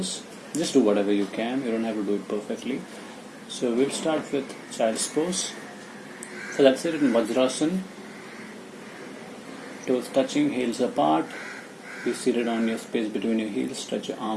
Just do whatever you can. You don't have to do it perfectly. So we'll start with child's pose. So that's it in Vajrasana. Toes touching, heels apart. Be seated on your space between your heels. Stretch your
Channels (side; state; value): both; identical; correlation 1.00